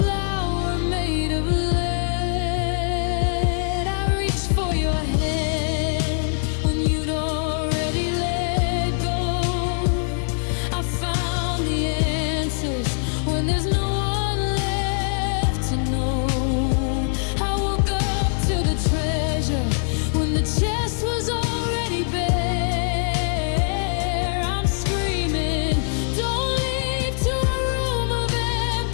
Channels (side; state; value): right; silent; digital silence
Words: made of lead. I reached for your hand when you'd already let go. I found the answers when there's no one left to know. I woke up to the treasure when the chest was already bare. I'm screaming, don't leave to a room of